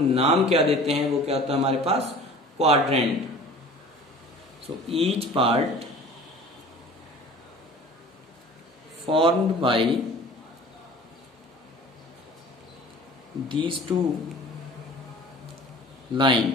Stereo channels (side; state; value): both; normal; correlation 0.44